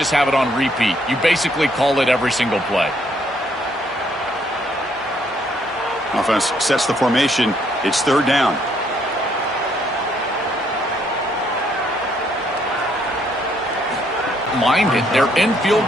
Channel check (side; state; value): both; normal; correlation 0.69